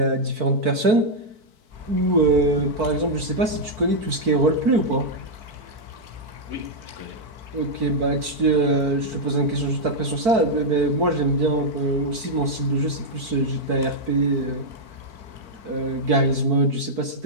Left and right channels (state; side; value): late; left; 4.5 ms